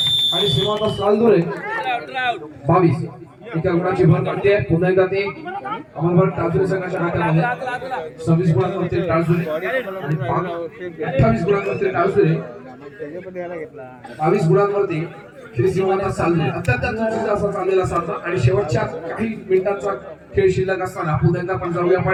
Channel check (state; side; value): identical; both; correlation 1.00